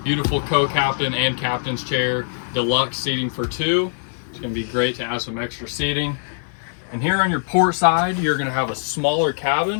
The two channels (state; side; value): silent; right; digital silence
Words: co-captain and captain's chair, deluxe seating for two. It's going to be great to add some extra seating. And here on your port side, you're going to have a smaller cabin